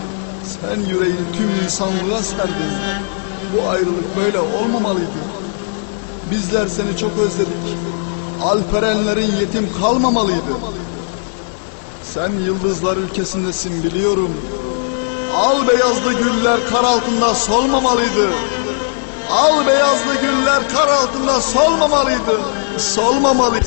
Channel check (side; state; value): right; silent; 58 dB below the other